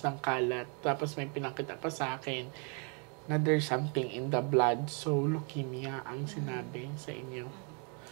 ng kalat. Tapos may pinakita pa sa akin na there's something in the blood. So, leukemia ang sinabi sa inyo.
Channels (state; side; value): quieter; left; 36.9 dB